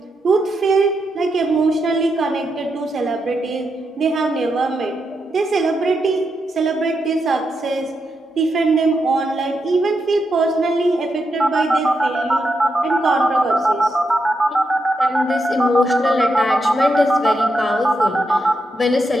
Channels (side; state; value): both; normal; correlation 0.84